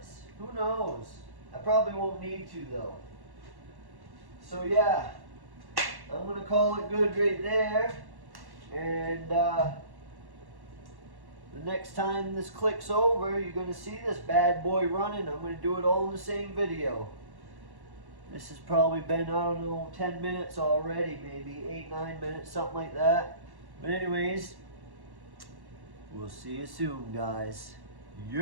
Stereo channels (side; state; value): left; late; 1.1 ms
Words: Who knows? I probably won't need to though. So yeah, I'm gonna call it good right there. And the next time this clicks over, you're going to see this bad boy running. I'm going to do it all in the same video. This has probably been, I don't know, 10 minutes already, maybe 8-9 minutes, something like that. But anyways, we'll see you soon, guys.